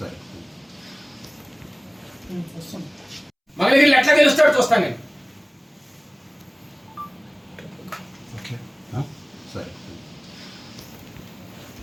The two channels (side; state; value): both; identical; correlation 1.00